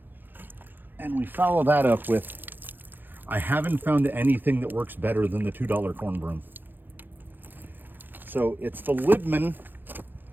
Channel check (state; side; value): late; left; 0.092 ms